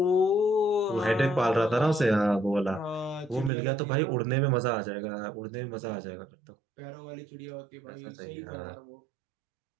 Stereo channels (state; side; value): drops out; left; at 3.5 s